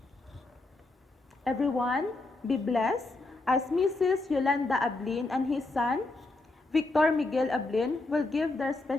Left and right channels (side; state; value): right; quieter; 3.1 dB